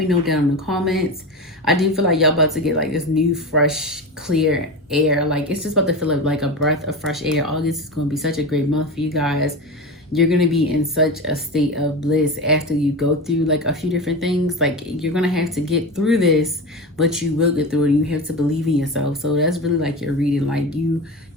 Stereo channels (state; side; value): normal; both; correlation 0.24